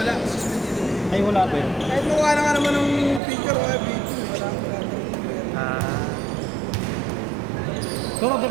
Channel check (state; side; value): drops out; left; at 3.2 s